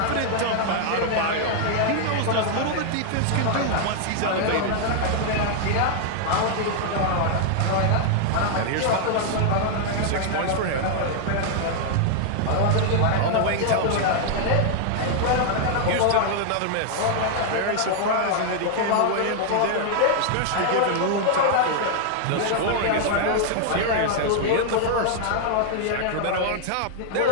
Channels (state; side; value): different; both; correlation -0.01